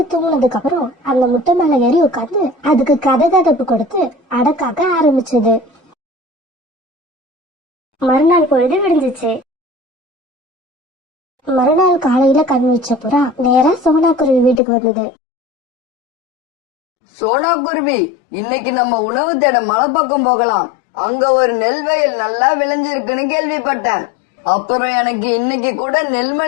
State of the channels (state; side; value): drops out; right; at 14.6 s